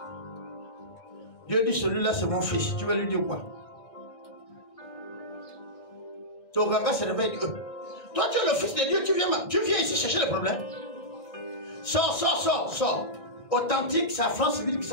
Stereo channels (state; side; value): late; right; 1.9 ms